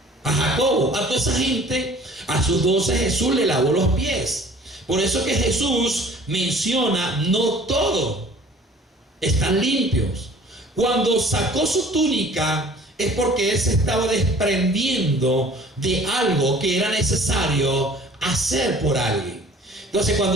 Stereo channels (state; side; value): normal; both; correlation 0.50